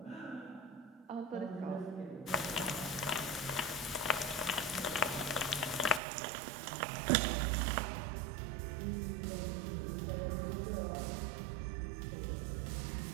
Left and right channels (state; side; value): drops out; left; at 6.0 s